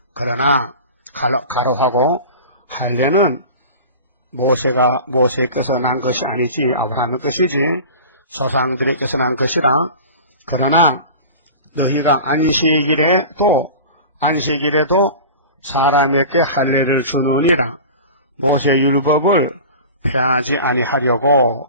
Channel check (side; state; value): both; inverted; correlation -0.36